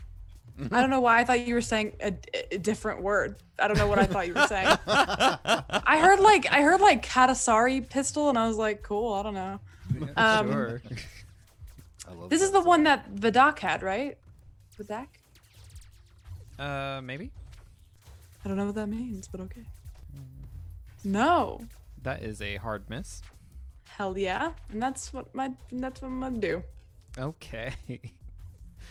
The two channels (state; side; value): identical; both; correlation 1.00